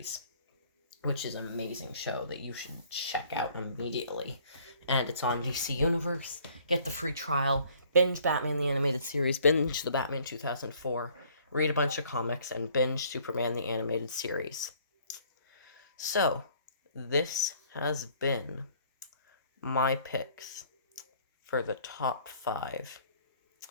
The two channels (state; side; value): inverted; both; correlation -0.59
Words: which is an amazing show that you should check out immediately. And it's on DC Universe. Get the free trial. Binge Batman the Animated Series. Binge the Batman 2004. Read a bunch of comics and binge Superman the Animated Series. So, this has been my picks for the top 5.